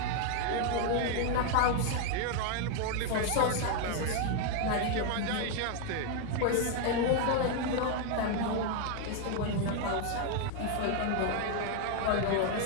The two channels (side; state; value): both; different; correlation 0.01